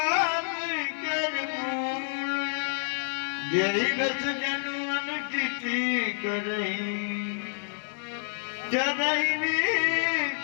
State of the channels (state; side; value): silent; right; 59 dB below the other